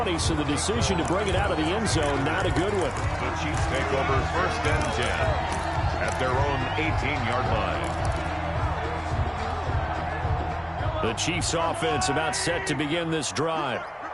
so the decision to bring it out of the end zone, not a good one. The Chiefs take over 1st and 10 at their own 18-yard line. The Chiefs offense about set to begin this drive.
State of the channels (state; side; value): identical; both; correlation 1.00